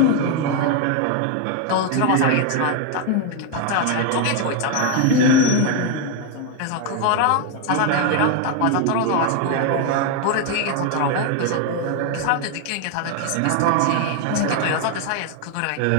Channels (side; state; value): both; different; correlation 0.01